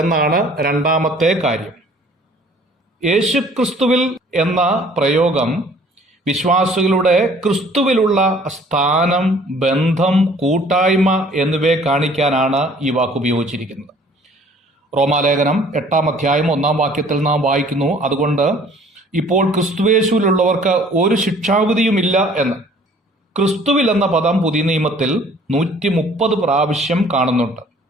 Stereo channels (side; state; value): both; normal; correlation 0.55